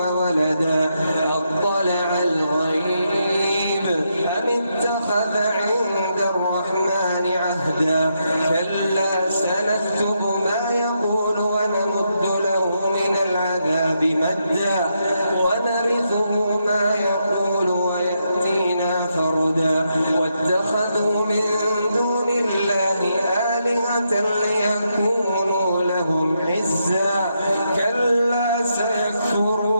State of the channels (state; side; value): inverted; both; correlation -0.81